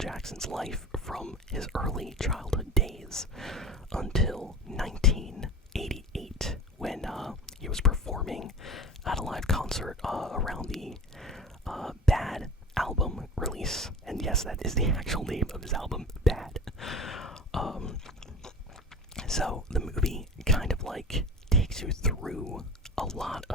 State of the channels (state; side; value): normal; both; correlation 0.35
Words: life from his early childhood days until 1988 when he was performing at a live concert around the Bad album release. And yes, that is the actual name of his album, Bad. So the movie kind of like takes you through a lot